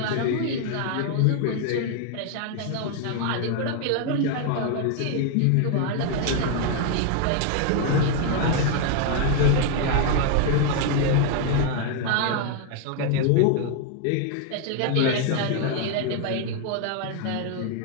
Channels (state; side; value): different; both; correlation 0.00